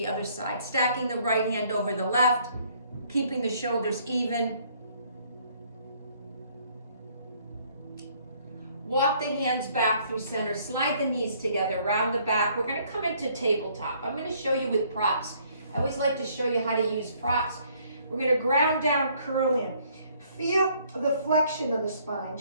other side, stacking the right hand over the left, keeping the shoulders even. Walk the hands back through center, slide the knees together, round the back. We're going to come into tabletop. I'm going to show you with props. I always like to show you how to use props. We're going to ground down, curl in. Feel the flexion of the spine,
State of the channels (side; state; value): both; inverted; correlation -0.63